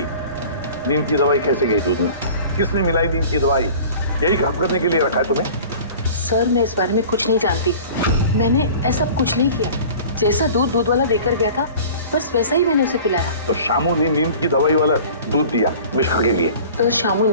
नींद की दवाई कैसे गई दूध में? किसने मिलाई नींद की दवाई? यही काम करने के लिए रखा है तुम्हें? सर मैं इस बारे में कुछ नहीं जानती। मैंने ऐसा कुछ नहीं किया। जैसा दूध वाला देकर गया था बस वैसा ही मैंने उसे पिलाया। तो शामू ने नींद की दवाई वाला दूध दिया मिशिका के लिए? तो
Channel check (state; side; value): inverted; both; correlation -0.43